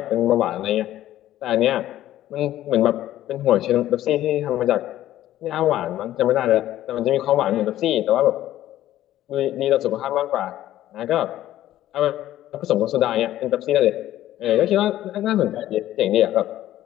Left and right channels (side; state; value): right; quieter; 13.5 dB